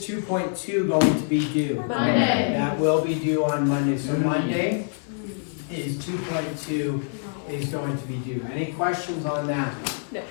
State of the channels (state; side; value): silent; right; 62 dB below the other